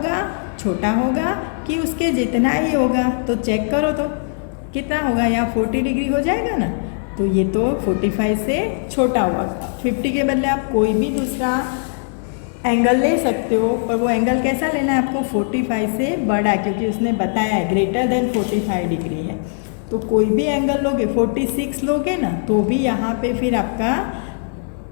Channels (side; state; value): right; silent; 66 dB below the other